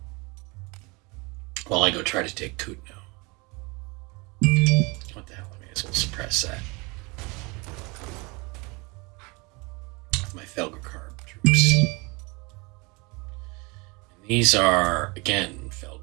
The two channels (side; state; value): left; quieter; 27.4 dB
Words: while I go try to take Kutno. What the hell? I may as well suppress that. My Felgercarb troops. And these are, again,